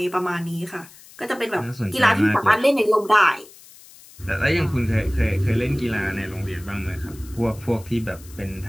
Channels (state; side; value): noise; left; hiss, 22 dB below the sound